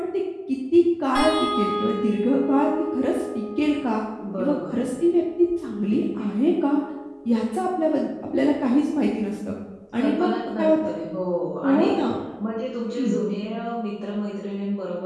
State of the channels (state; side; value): identical; both; correlation 1.00